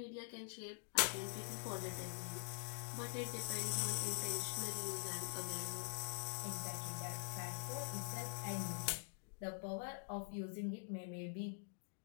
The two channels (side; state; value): right; silent; digital silence